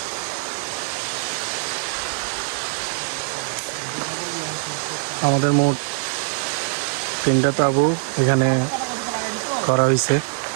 আমাদের মোট 3টা তাঁবু এখানে করা হয়েছে,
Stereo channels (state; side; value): silent; left; 64 dB below the other